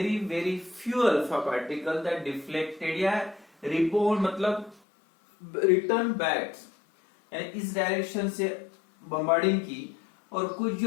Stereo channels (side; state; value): right; drops out; at 4.8 s